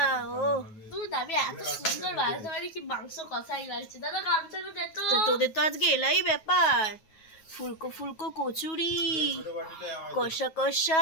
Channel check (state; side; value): late; right; 9.4 ms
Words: ও তুই দাবি এত সুন্দর বানাতে পারি কি মাংস কষাই লাগছে। দাদা গামছাটা দে তো। তো তোদের তো আজকে এলাই ব্যাপার, ফুলকো ফুলকো কচুরি, কষা কষা